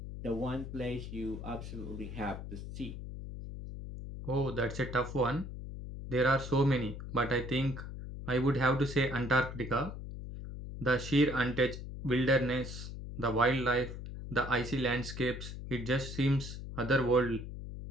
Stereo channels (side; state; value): left; noise; hum, 9 dB below the sound